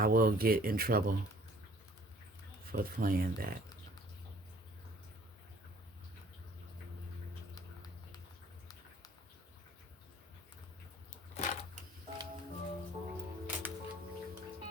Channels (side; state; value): both; normal; correlation 0.56